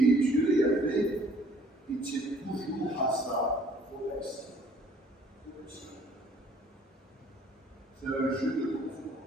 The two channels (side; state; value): both; normal; correlation 0.58